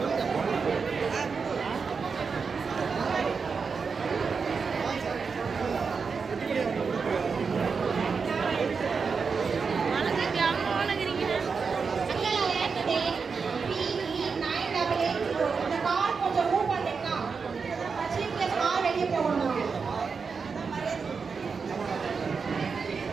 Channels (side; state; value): left; quieter; 5.3 dB